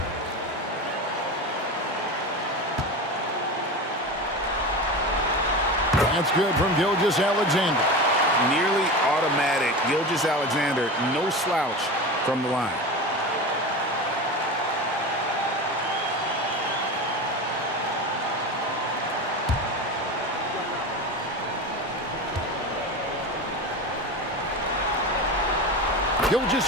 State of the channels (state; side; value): normal; both; correlation 0.26